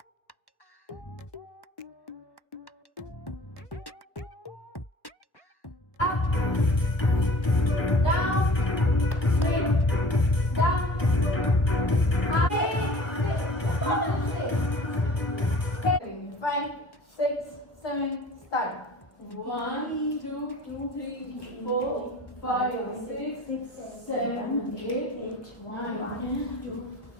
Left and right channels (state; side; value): late; right; 1.2 ms